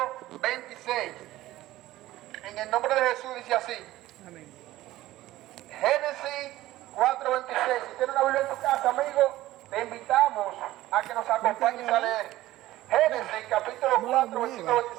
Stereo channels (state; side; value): quieter; left; 15.9 dB